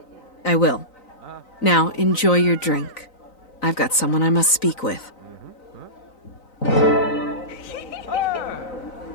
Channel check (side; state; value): right; late; 3.9 ms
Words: I will. Now, enjoy your drink. I've got someone I must speak with.